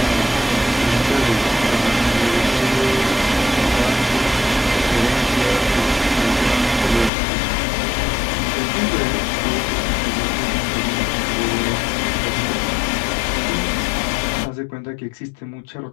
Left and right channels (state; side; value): drops out; right; at 7.1 s